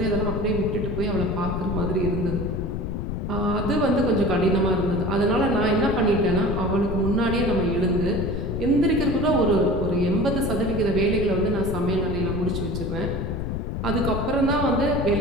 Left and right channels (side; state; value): left; noise; rumble, 3 dB below the sound